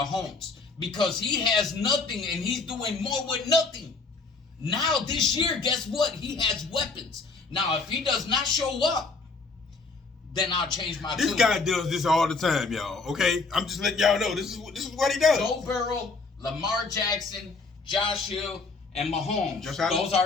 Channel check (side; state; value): right; quieter; 4.0 dB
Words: because he has nothing and he's doing more with nothing. Now this year, guess what? He has weapons. Now if he does not show up, then I'll change my tune. This guy does this all the time, y'all. Okay, I'm just letting y'all know this is what he does. Joe Burrow, Lamar Jackson, Josh Hill, and Mahomes. Those